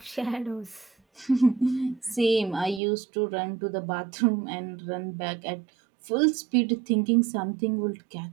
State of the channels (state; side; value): drops out; left; at 2.8 s